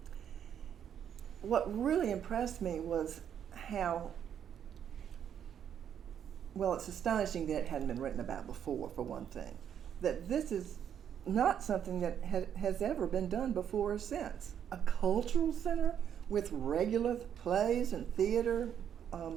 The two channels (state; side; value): quieter; left; 9.0 dB